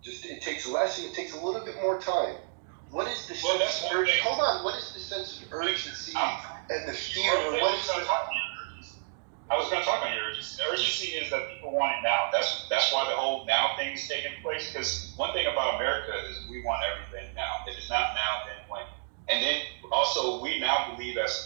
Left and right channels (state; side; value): silent; left; digital silence